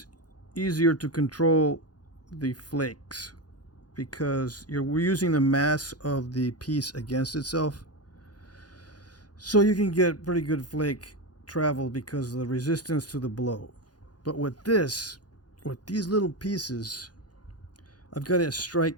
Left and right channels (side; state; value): right; late; 0.69 ms